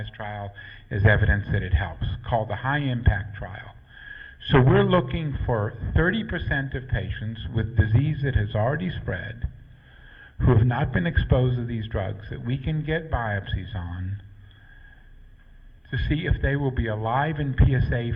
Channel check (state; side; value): identical; both; correlation 1.00